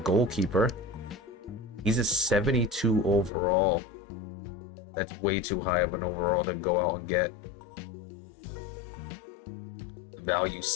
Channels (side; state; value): right; drops out; at 3.3 s